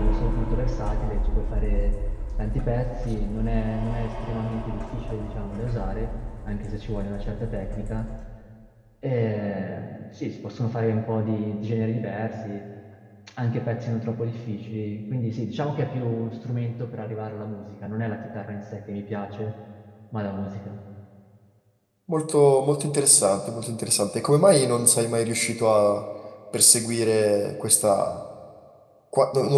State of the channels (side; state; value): both; identical; correlation 1.00